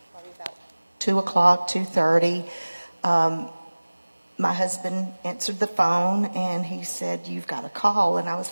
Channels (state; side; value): inverted; both; correlation -1.00